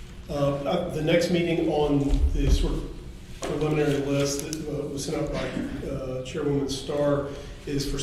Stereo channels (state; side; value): identical; both; correlation 1.00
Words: The next meeting on the sort of preliminary list that was sent out by Chairwoman Starr is for